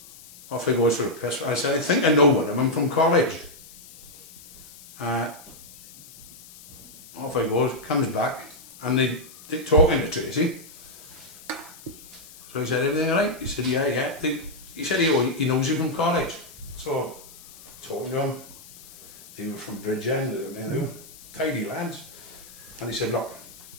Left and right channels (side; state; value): left; noise; hiss, 19 dB below the sound